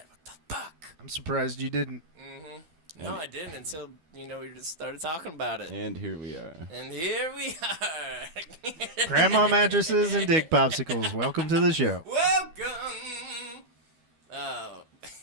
What the fuck? I'm surprised you didn't. No, And- I didn't until we just started talking about it. And here we are. And here we are. Grandma mattresses and dick popsicles. Welcome to the show. Welcome. Oh,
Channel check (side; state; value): left; late; 12 ms